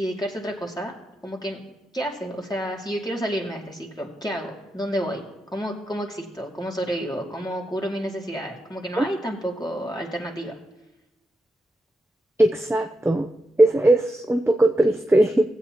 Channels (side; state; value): both; normal; correlation 0.87